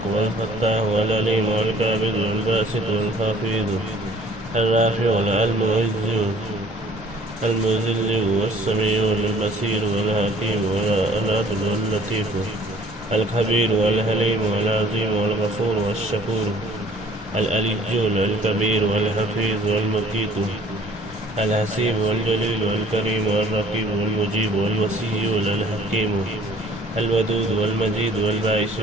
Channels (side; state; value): both; normal; correlation 0.54